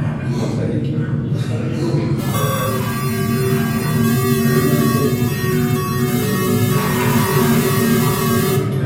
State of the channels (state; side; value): identical; both; correlation 1.00